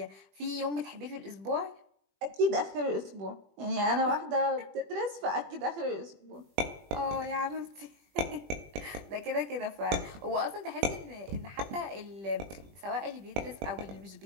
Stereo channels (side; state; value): left; late; 20 ms